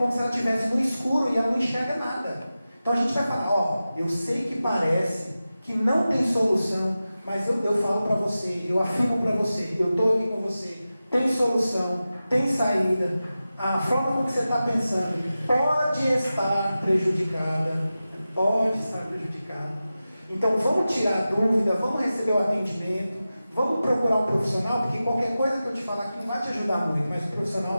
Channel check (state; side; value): inverted; both; correlation -0.94